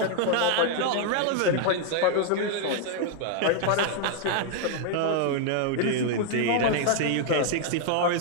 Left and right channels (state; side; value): different; both; correlation 0.00